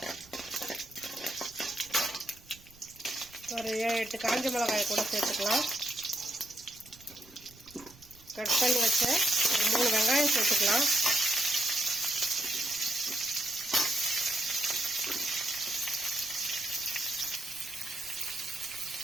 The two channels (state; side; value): noise; right; rumble, 24 dB below the sound